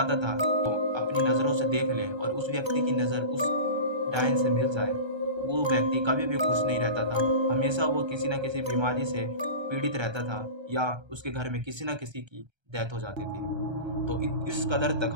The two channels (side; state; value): left; late; 1.3 ms